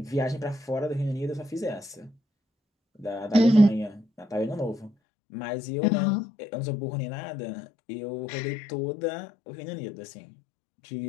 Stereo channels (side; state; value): right; drops out; at 4.9 s